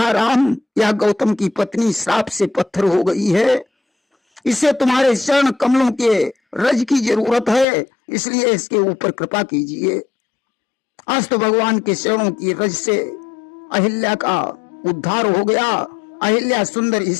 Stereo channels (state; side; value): drops out; right; at 7.7 s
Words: राम, यह गौतम की पत्नी श्राप से पत्थर हो गई है, इसे तुम्हारे चरण कमलों के रज की जरूरत है, इसलिए इसके ऊपर कृपा कीजिए। आज तो भगवान के चरणों की रज से अहिल्या का उद्धार हो गया। अहिल्या सुंदर